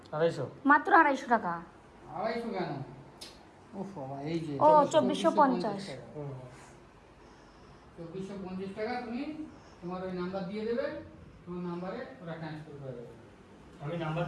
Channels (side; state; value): both; identical; correlation 1.00